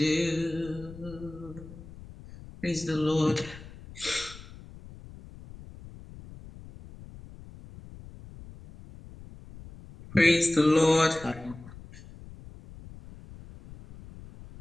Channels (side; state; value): left; noise; rumble, 17 dB below the sound